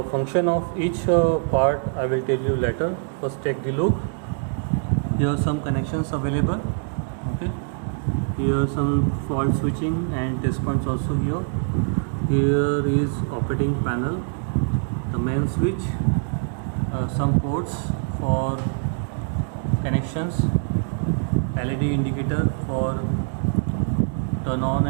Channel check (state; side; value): silent; left; 63 dB below the other